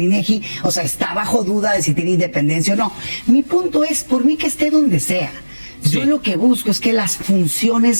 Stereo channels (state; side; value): inverted; both; correlation -1.00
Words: INEGI. O sea, está bajo duda de si tiene independencia o no. Mi punto es, por mí que esté donde sea. Yo Sí. lo que busco es que las funciones